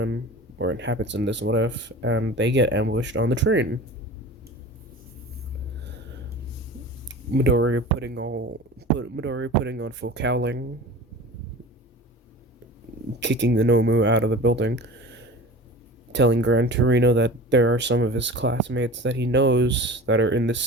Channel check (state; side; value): normal; both; correlation 0.37